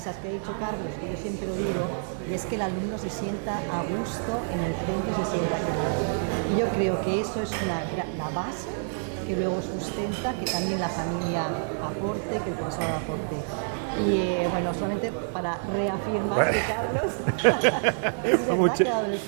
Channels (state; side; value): silent; left; digital silence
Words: que ha dicho Carlos, que yo siempre lo digo, y es que el alumno se sienta a gusto en el centro y se sienta querido. Y yo creo que eso es la base que luego sustenta que también la familia aporte, que el profesorado aporte. Y bueno, solamente para reafirmar que Carlos es verdad que ha dado en el